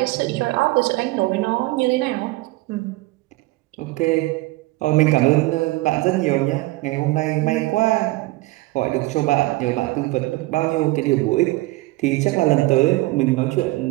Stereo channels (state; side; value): quieter; left; 20.6 dB